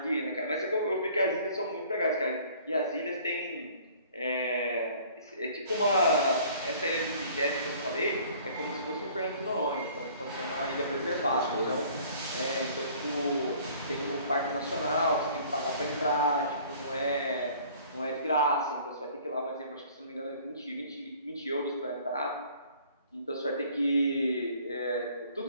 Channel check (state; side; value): inverted; both; correlation -0.53